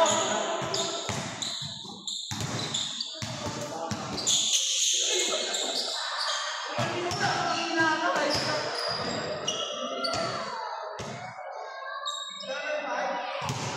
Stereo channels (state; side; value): identical; both; correlation 1.00